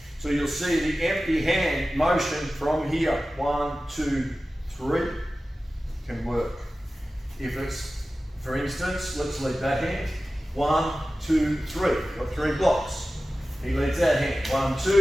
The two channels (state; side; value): normal; both; correlation 0.95